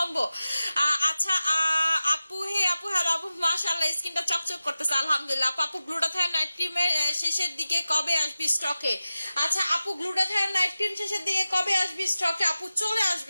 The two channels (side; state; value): both; inverted; correlation -0.94